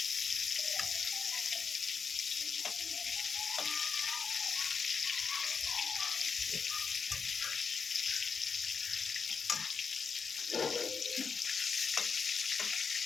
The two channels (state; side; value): quieter; right; 5.5 dB